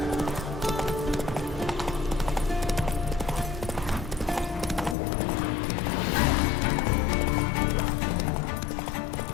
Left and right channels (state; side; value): drops out; right; at 5.0 s